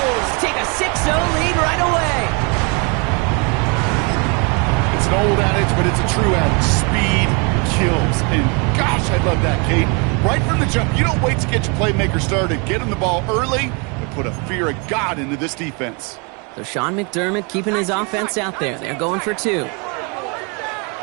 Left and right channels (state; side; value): quieter; left; 32.0 dB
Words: take a 6-0 lead right away. It's an old adage, but it's a true adage. Speed kills. And gosh, I love that, Kate. Right from the jump, you don't wait to get your playmaker started. Get him the ball early and put a fear of God into this defense. So Sean McDermott keeping his offense out there. They're going for 2.